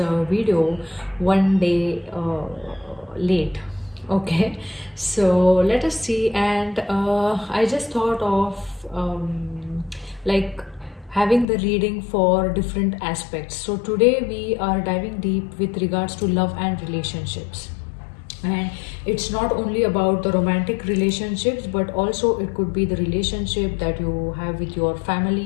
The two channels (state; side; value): drops out; right; at 11.5 s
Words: video one day late. Okay, so let us see. And I just thought of like having the reading for different aspects. So today we are diving deep with regards to love and relationships. And it's not only about the romantic relationships, but also it could be the relationship that you have with your